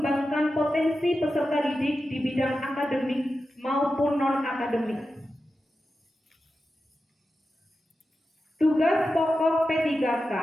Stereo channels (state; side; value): normal; both; correlation 0.91